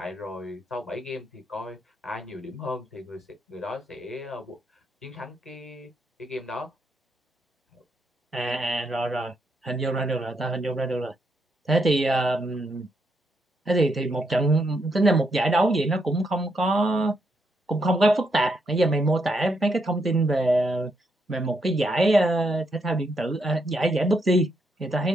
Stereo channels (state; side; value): normal; both; correlation 0.78